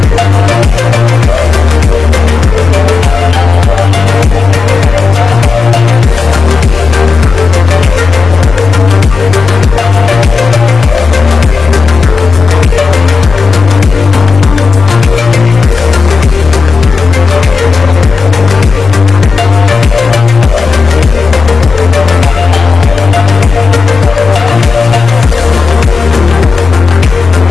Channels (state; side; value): quieter; right; 4.7 dB